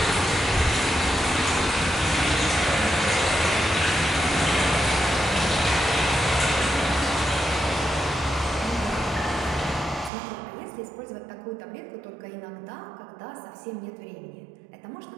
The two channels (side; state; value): left; drops out; at 10.1 s